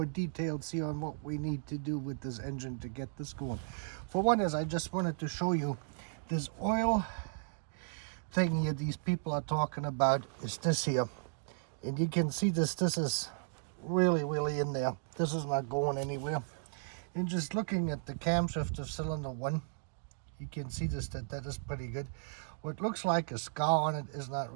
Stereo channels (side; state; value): left; silent; digital silence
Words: details here on what we need to do with this engine to get this going. For one is, I just wanted to show you this oil thing here these people are talking about is this here. And you can see this is really in there. This is not going anywhere. And just looking at the camshaft of cylinder 1, you can see that is pretty good. What looks like a scar on it is not